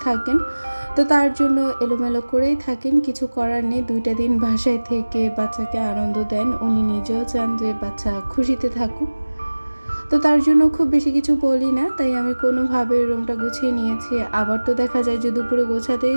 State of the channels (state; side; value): inverted; both; correlation -1.00